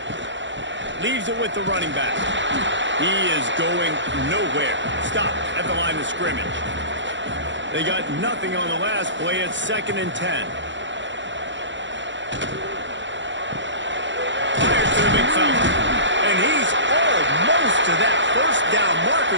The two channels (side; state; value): left; late; 0.54 ms